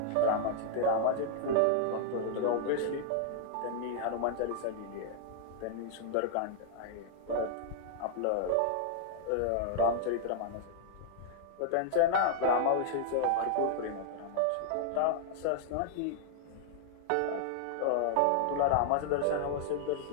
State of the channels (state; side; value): different; both; correlation -0.01